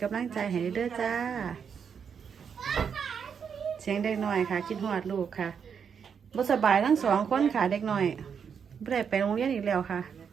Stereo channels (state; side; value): quieter; left; 7.0 dB